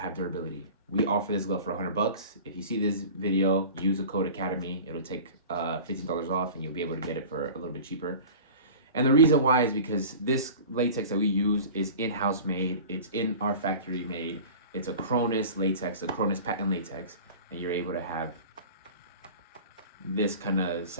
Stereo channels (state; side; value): inverted; both; correlation -0.38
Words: durability. We offer this glove for $100. If you see this video, use the code Academy. It'll take $15 off, and you'll be able to get it for a little bit cheaper. And the reason why is because this latex that we use is in-house made. It's in our factory made. It's a Kronis latex, a Kronis patent latex, and you're able to have this kind of